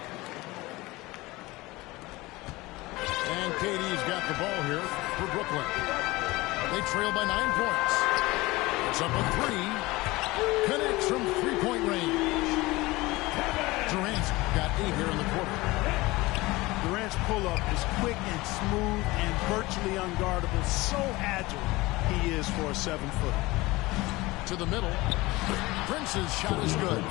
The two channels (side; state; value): right; quieter; 20.9 dB